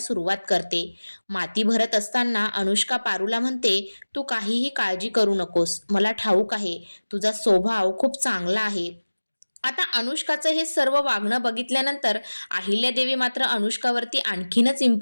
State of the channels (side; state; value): both; inverted; correlation -1.00